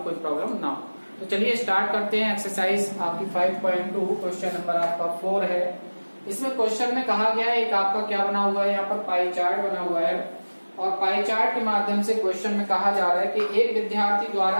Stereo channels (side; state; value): both; inverted; correlation -1.00